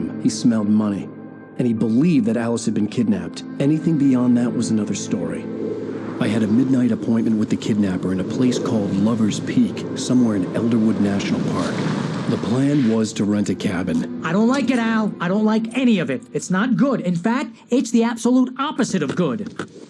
He smelled money. And he believed that Alice had been kidnapped. Anything beyond that was another story. I had a midnight appointment with the kidnapper in a place called Lover's Peak, somewhere in Elderwood National Park. The plan was to rent a cabin. I don't like it, Al. I don't like any of it. It's not good. In fact, it's the absolute opposite of good.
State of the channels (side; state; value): both; identical; correlation 1.00